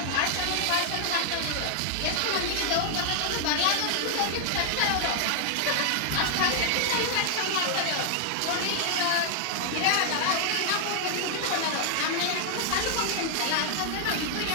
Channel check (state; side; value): different; both; correlation 0.00